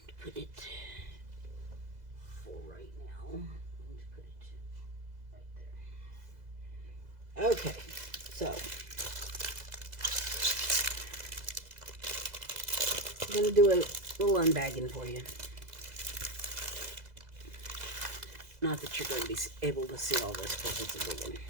for right now. I'm going to put it right there. Okay, so... I'm going to do little unbagging for you. Not that you're going to be able to see all this, but it's a big one.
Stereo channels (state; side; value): late; left; 2.0 ms